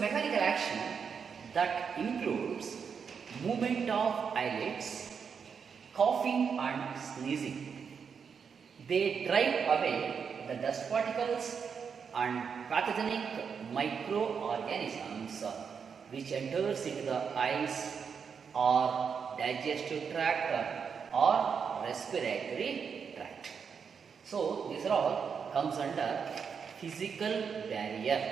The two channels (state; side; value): quieter; left; 6.5 dB